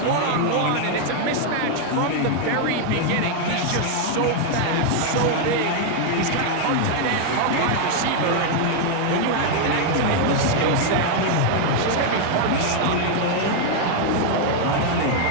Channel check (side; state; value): both; different; correlation 0.00